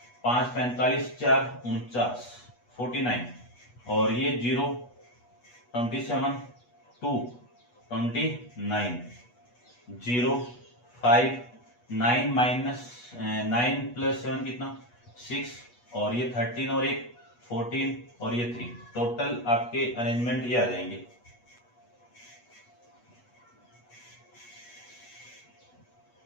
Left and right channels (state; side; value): late; right; 8.2 ms